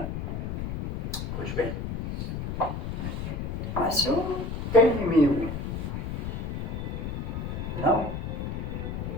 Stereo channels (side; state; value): left; noise; rumble, 4 dB below the sound